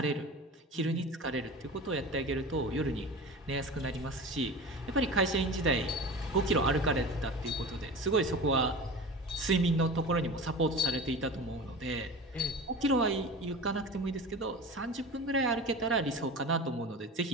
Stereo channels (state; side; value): normal; both; correlation 0.32